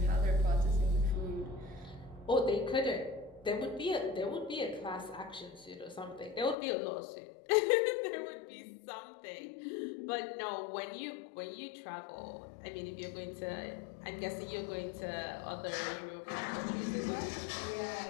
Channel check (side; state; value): right; drops out; at 6.6 s